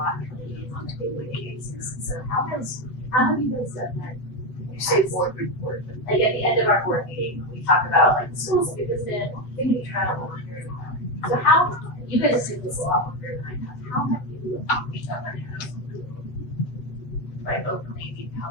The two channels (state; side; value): late; right; 8.0 ms